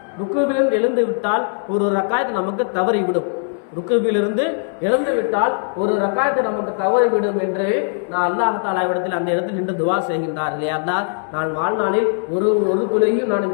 ருக்குவிலிருந்து எழுந்து விட்டால் ஒரு ரக்காயத் நமக்கு தவறிவிடும். ருக்குவிலிருந்து எழுந்து விட்டால் ஒரு ரக்காயத்தை நமக்கு தவறிவிடும் என்று நான் அல்லாஹ் தஆலாவிடத்தில் அந்த இடத்தில் நின்று துவா செய்கின்றார். இல்லையா அல்லாஹ், நான் வாழ்நாளில் ஒரு தொழுகையும் நான்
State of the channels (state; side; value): silent; right; 63 dB below the other